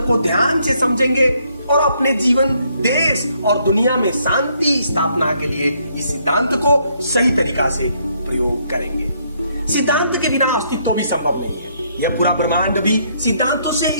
को ध्यान से समझेंगे और अपने जीवन, देश और दुनिया में शांति स्थापना के लिए इस सिद्धांत को सही तरीका से प्रयोग करेंगे। सिद्धांत के बिना अस्तित्व भी संभव नहीं है। यह पूरा ब्रह्मांड भी सिद्धांतों से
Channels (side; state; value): both; inverted; correlation -0.71